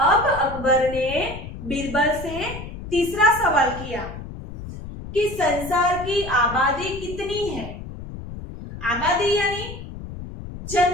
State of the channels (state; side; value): noise; left; rumble, 11 dB below the sound